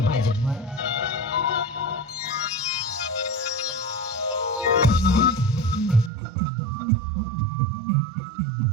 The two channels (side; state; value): left; drops out; at 6.1 s